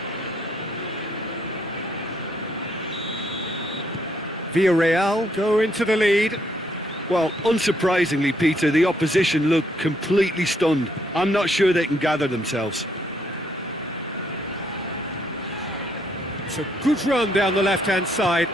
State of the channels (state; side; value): normal; both; correlation 0.71